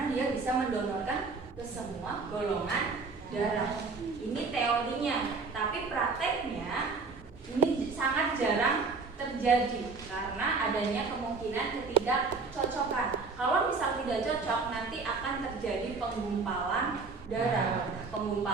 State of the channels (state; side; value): quieter; left; 4.4 dB